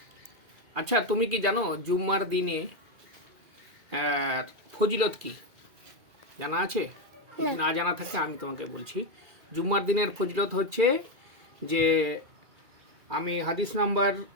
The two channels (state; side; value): late; left; 2.4 ms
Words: আচ্ছা, তুমি কি জানো জুম্মার দিনে ফজিলত কি জানা আছে? না জানা থাকলে আমি তোমাকে বলছি। জুম্মার দিনের ফজিলত হচ্ছে যে, আমি হাদিস নাম্বার